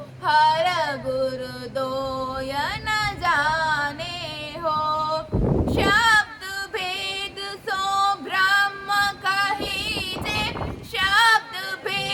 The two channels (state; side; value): identical; both; correlation 1.00